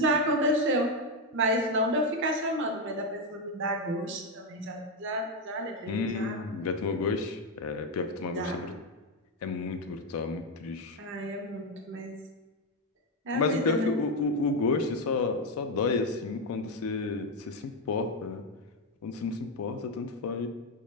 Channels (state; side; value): normal; both; correlation 0.06